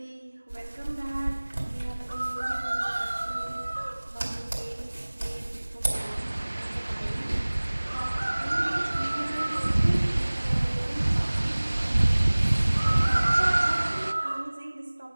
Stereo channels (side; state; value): both; inverted; correlation -1.00